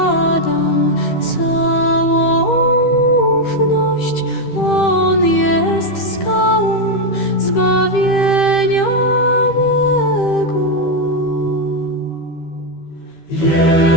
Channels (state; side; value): late; right; 13 ms